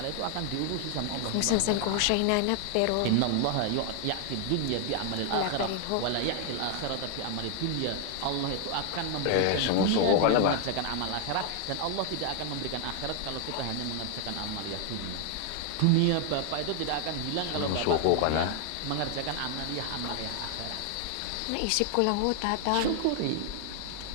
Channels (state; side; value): different; both; correlation 0.00